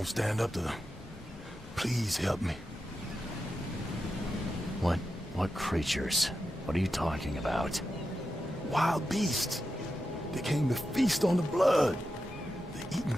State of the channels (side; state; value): both; normal; correlation 0.89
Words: stand up to them. Please help me. What creatures? What are you talking about? Wild beasts. They came to feast on the blood. They're eating